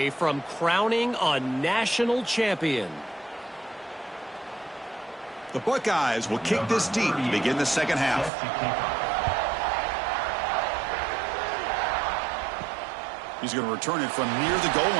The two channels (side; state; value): left; drops out; at 8.3 s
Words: from crowning a national champion. The Buckeyes will kick this deep to begin the second half. He's going to return it from near the goal